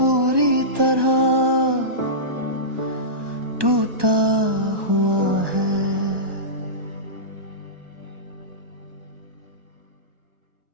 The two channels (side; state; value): left; late; 1.2 ms